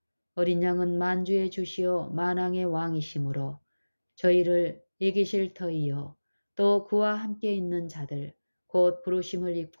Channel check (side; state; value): both; inverted; correlation -1.00